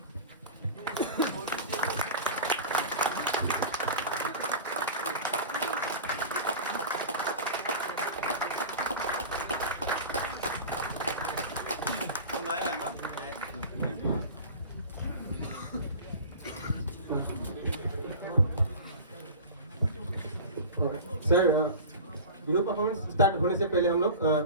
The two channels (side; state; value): both; inverted; correlation -0.33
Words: Sir, Bihu performance start होने से पहले हम लोग